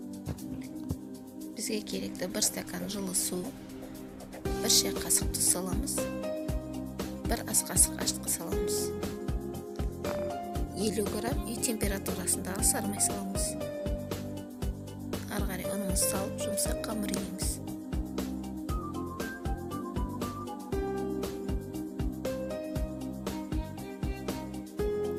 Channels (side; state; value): both; identical; correlation 1.00